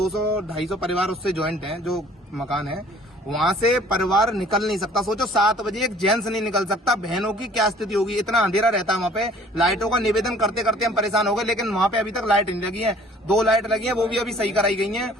परिवार उससे ज्वाइंट हैं, जो मकान है, वहां से परिवार निकल नहीं सकता। सोचो 7 बजे एक जेंट्स नहीं निकल सकता, बहनों की क्या स्थिति होगी। इतना अंधेरा रहता है वहां पे। लाइटों का निवेदन करते करते हम परेशान हो गए, लेकिन वहां पे अभी तक लाइट नहीं लगी है। 2 लाइट लगी है, वो भी अभी सही कराई गई है।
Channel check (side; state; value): both; normal; correlation 0.54